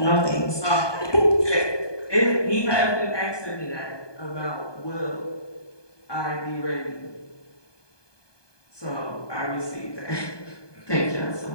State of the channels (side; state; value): right; late; 1.2 ms